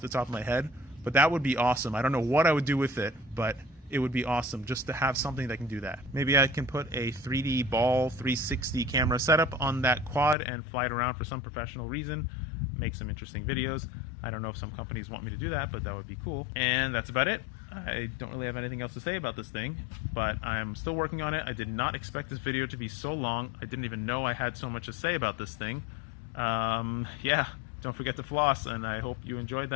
the top of my head, but that would be awesome. I don't know what I would do with it, but it would be awesome just to have something that can do that. Maybe I can put a 3D ball 360 camera setup on that quad and fly it around for some professional reason, make some interesting videos. I don't know if some companies want me to do that, but that would be cool. And that's about it. I don't really have anything else to say about this thing, but I'm still working on it. I did not expect this video to be so long. I didn't even know I had so much to say about this thing. Yeah, don't forget to floss, and I hope you enjoyed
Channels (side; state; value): right; drops out; at 10.4 s